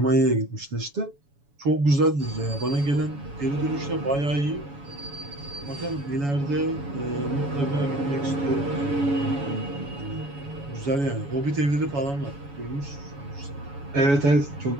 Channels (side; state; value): left; late; 7.1 ms